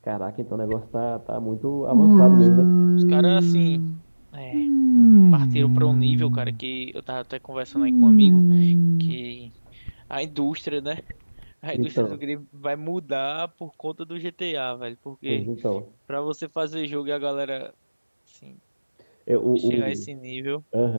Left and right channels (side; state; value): both; inverted; correlation -1.00